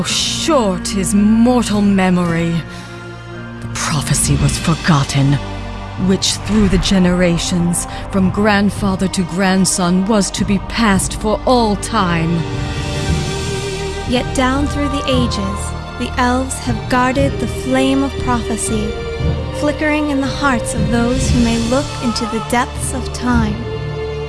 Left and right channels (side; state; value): both; identical; correlation 1.00